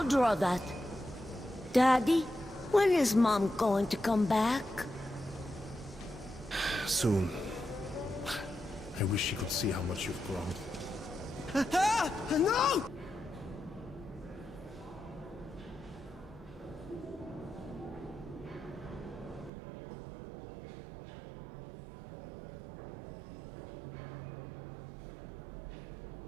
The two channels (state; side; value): drops out; left; at 19.5 s